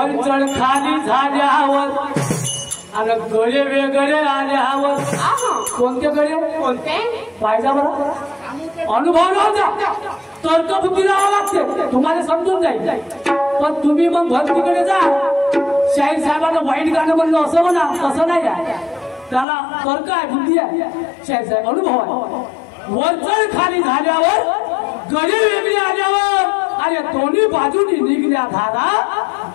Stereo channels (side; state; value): right; drops out; at 19.5 s